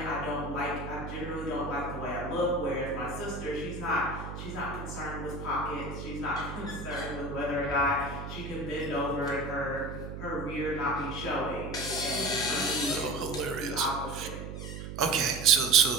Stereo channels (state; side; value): noise; right; hum, 8 dB below the sound